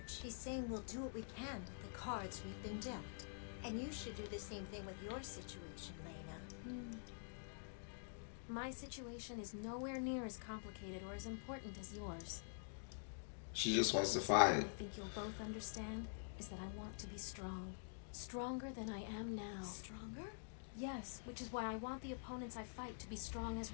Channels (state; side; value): silent; right; digital silence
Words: she's saying we'll do what we can with the cards we've been dealt. And you should do the same thing with your situation, Lena. My situation is nowhere near as complicated or as important as yours. She just wants to Something fight. I think you'll both understand is that I want to be strong. Stronger than I am now. Stronger? Yes, which is why I want the opponents I fight to be strong as